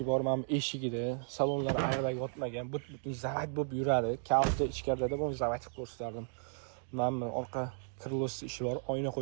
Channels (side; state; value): left; silent; digital silence